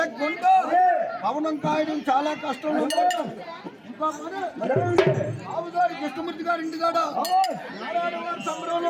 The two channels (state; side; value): identical; both; correlation 1.00